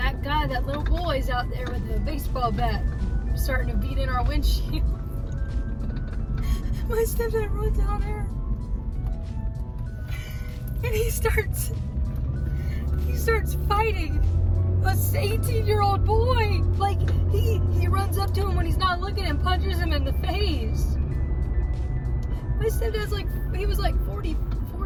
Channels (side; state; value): both; identical; correlation 1.00